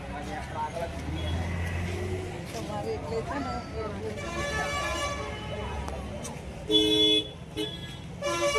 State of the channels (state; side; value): identical; both; correlation 1.00